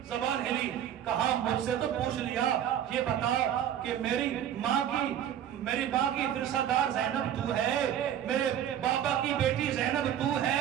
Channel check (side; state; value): left; quieter; 10.2 dB